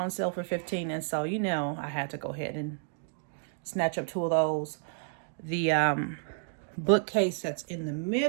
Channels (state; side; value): silent; left; digital silence